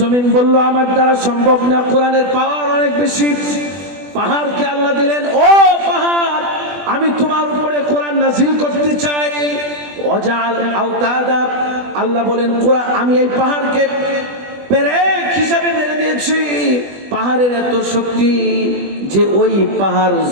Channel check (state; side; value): late; left; 20 ms